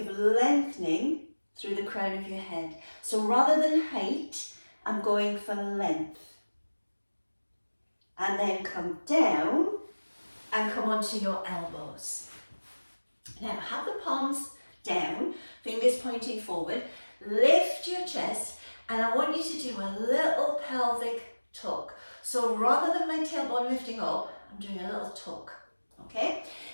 lengthening through the crown of your head? So rather than height, I'm going for length. And then come down and come onto your elbows. Now have the palms down, fingers pointing forward, lift your chest, and I want you to do a little pelvic tuck. So rather than my tailbone lifting up, I'm doing a little tuck, okay?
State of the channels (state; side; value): inverted; both; correlation -1.00